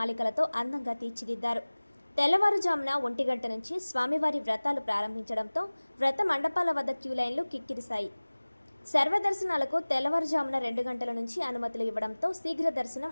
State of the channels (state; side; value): inverted; both; correlation -1.00